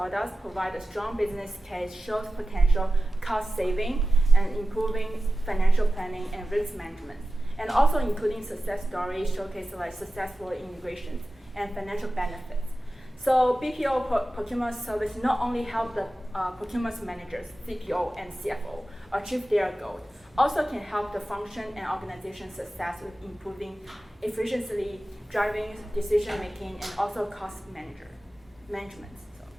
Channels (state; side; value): normal; both; correlation 0.95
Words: provide a strong business case, shows potential cost saving and improving financial planning and risk management, and also including success stories showcase successful integrations and financial benefits. So BPO procurement service not only help the procurement managers, CPO and CFO achieve their goals, also can help the function and organization success with improving efficiency, driving decision making, and also cost management.